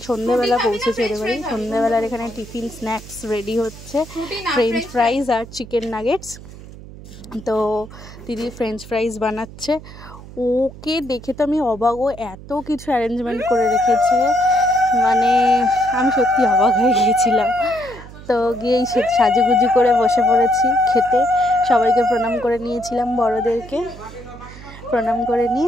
সন্ধ্যেবেলা পৌঁছেছি ওদের বাড়ি। সন্ধ্যেবেলার এখানে টিফিন স্ন্যাক্স রেডি হচ্ছে, ফ্রেঞ্চ ফ্রাইজ আর চিকেন নাগেটস। তো দিদি ফ্রেঞ্চ ফ্রাইজ বানাচ্ছে। ওকে দেখে তো আমি অবাক, ও এত কিছু অ্যারেঞ্জমেন্ট করে রেখেছে, মানে আমি সত্যি অবাক হয়ে গিয়েছিলাম। তো গিয়েই সাজুগুজু করে বসে পড়েছি খেতে। সবাইকে প্রণাম করে নিয়েছিলাম, বড়োদেরকে প্রণাম করে নিয়ে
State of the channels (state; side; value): noise; right; hum, 16 dB below the sound